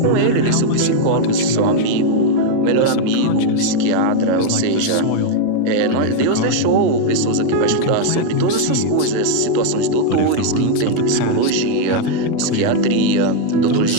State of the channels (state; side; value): different; both; correlation 0.00